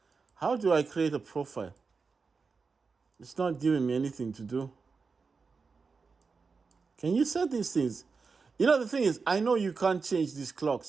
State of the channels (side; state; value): left; quieter; 4.8 dB